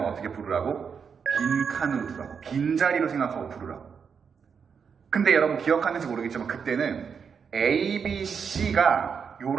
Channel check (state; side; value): quieter; left; 6.4 dB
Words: 어떻게 부르라고? 빈칸으로 두라고. 빈자리로 생각하고 부르라고. 근데 여러분 기억하는지 모르겠지만 그때는 A, B, C가